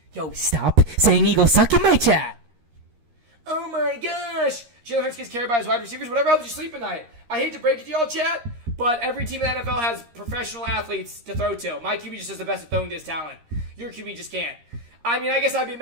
Yo, stop saying Eagles suck in my chat. Oh my gosh. Jalen Hurts gets carried by his wide receivers. Whatever helps you sleep at night. I hate to break it to y'all, chat, but every team in the NFL has professional athletes to throw to. My QB just is the best at throwing to his talent. Your QB just can't. I mean, I guess I'd be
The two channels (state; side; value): late; left; 13 ms